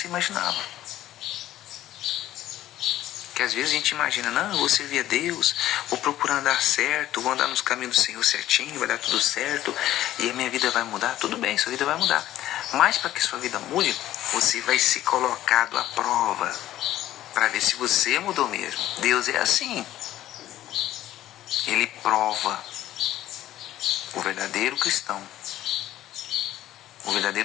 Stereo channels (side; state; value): right; quieter; 13.6 dB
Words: imaginava. Que às vezes a gente imagina, não, eu vou servir a Deus, vou procurar andar certo, vou andar nos caminhos do Senhor certinho, vai dar tudo certo, e a minha vida vai mudar. Tudo bem, sua vida vai mudar. Mas para que sua vida mude, você vai ser colocado à prova, para ver se você mudou mesmo. Deus é assim. Ele prova o verdadeiro cristão O